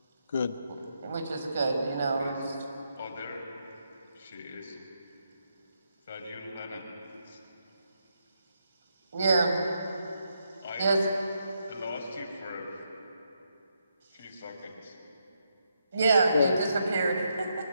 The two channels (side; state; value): both; inverted; correlation -0.80